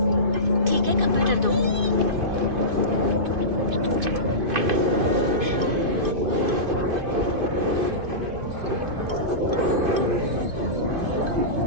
ठीक है, कंप्यूटर दो।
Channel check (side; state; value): left; late; 2.5 ms